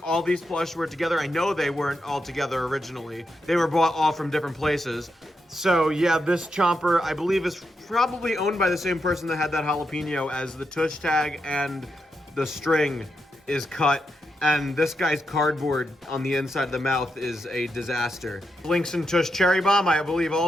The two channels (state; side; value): normal; both; correlation 0.84